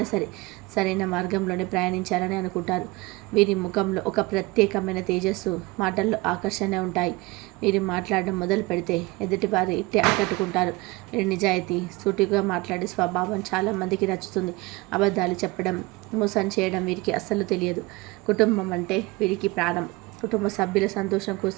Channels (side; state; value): left; quieter; 23.0 dB